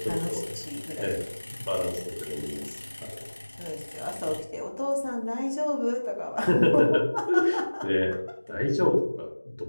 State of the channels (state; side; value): inverted; both; correlation -1.00